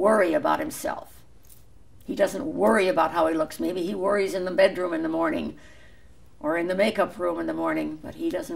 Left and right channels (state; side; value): identical; both; correlation 1.00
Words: about himself. He doesn't worry about how he looks. Maybe he worries in the bedroom in the morning or in the makeup room in the morning, but he